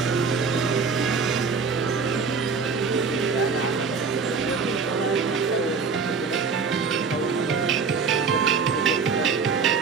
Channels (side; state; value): left; quieter; 5.2 dB